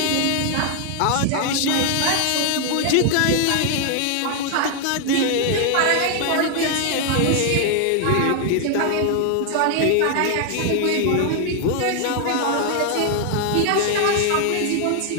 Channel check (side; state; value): both; different; correlation 0.00